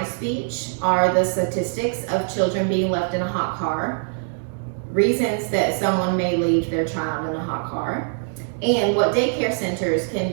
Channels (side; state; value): left; silent; 64 dB below the other